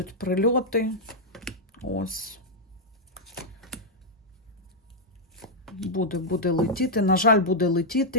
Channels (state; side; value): normal; both; correlation -0.05